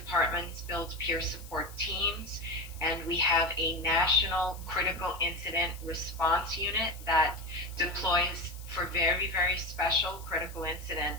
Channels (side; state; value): left; noise; hiss, 19 dB below the sound